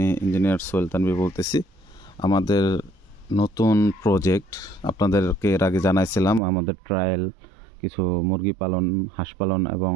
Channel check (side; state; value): left; drops out; at 6.4 s